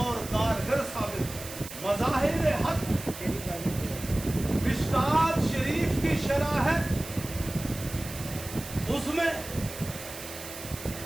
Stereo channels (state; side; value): noise; right; hiss, 12 dB below the sound